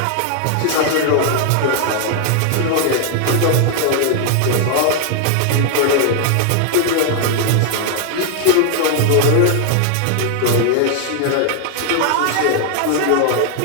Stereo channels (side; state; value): both; different; correlation 0.00